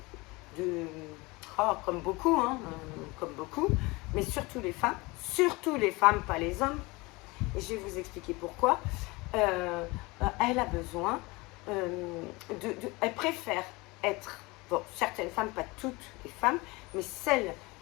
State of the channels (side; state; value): right; quieter; 24.0 dB